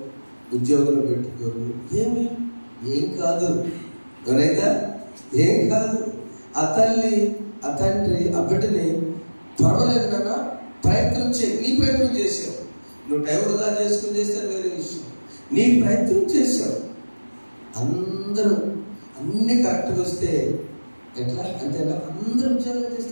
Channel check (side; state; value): both; inverted; correlation -1.00